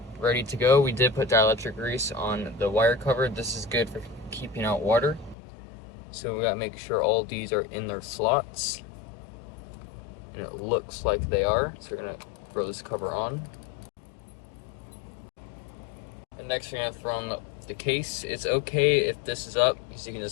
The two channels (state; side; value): drops out; right; at 5.4 s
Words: ready to go. We did put dielectric grease on the wire cover. This is good for keeping out water. So we gotta make sure all these are in their slots. And it looks like they are. So we're gonna throw this cover on. And next we're gonna throw on the case. It's okay if this is up because you can